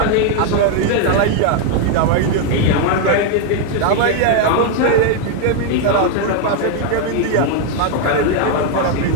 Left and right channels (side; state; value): both; different; correlation 0.01